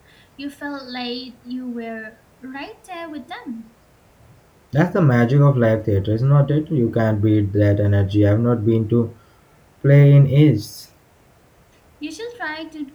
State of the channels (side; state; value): both; identical; correlation 1.00